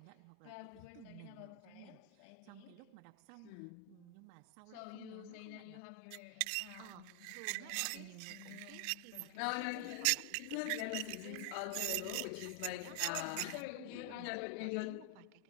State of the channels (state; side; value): different; both; correlation 0.00